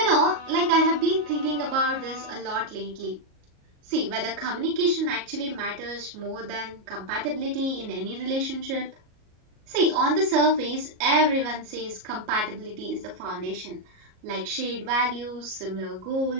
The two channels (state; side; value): late; left; 38 ms